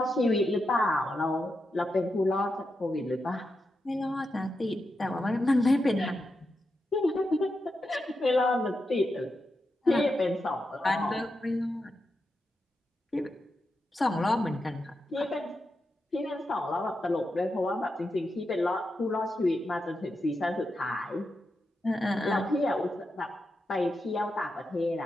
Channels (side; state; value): both; normal; correlation 0.87